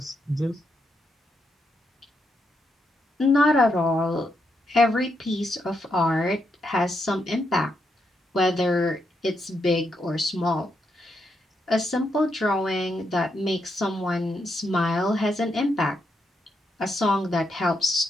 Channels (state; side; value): normal; both; correlation 0.81